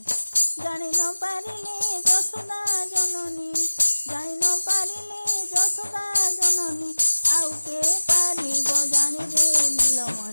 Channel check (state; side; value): inverted; both; correlation -1.00